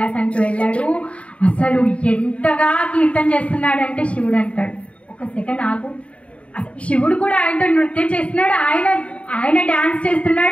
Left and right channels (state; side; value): late; right; 0.063 ms